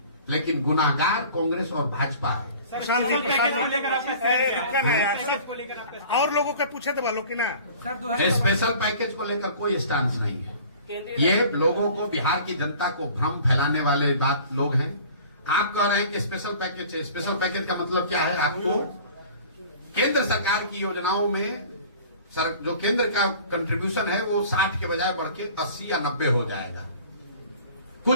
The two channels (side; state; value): both; inverted; correlation -0.46